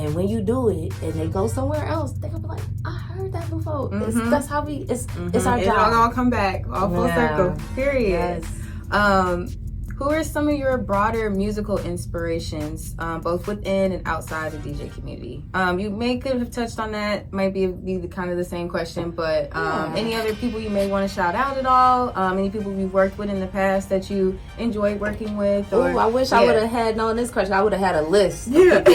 when you do it and they go somewhere else, they're gonna be like, I heard that before. That's how it's our job. It'll all come back, all full circle. Period. Yes. Who are some of your broader musical inspirations, both within and outside the DJ community? You could have touched on that. Might be the kind of the same question, but any other people you may want to shout out at all? Any people you've worked with in the past that you enjoyed working with? Or, I wish I would have had known this question. I would have had a list of people,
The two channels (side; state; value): both; identical; correlation 1.00